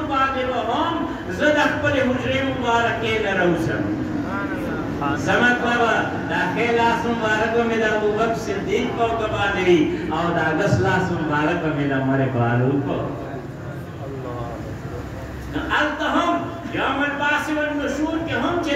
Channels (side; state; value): both; identical; correlation 1.00